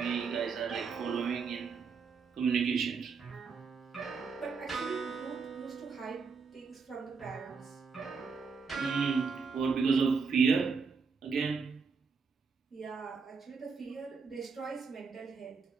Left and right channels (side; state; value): left; quieter; 5.2 dB